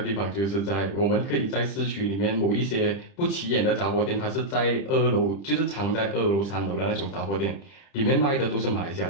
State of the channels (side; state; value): right; late; 30 ms